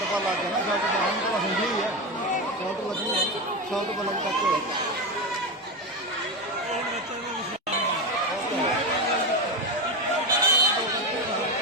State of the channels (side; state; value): both; normal; correlation 0.16